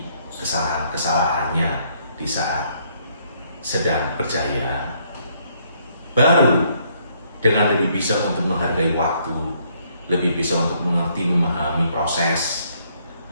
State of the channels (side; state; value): both; inverted; correlation -0.69